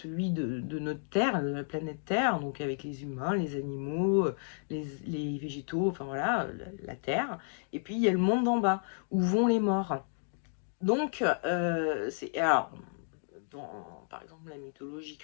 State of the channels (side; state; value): right; silent; digital silence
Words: de notre Terre, de la planète Terre, donc avec les humains, les animaux, les végétaux, enfin voilà, la Terre. Et puis il y a le monde d'en bas, où vont les morts. Donc, alors, par exemple, la mythologie